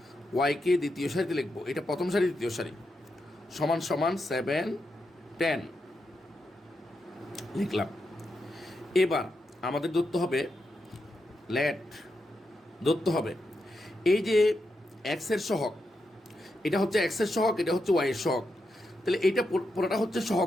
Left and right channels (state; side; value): normal; both; correlation 0.85